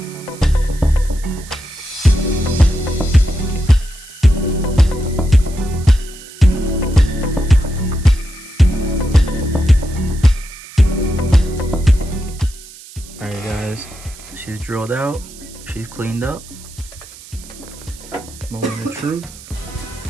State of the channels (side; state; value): right; noise; hiss, 19 dB below the sound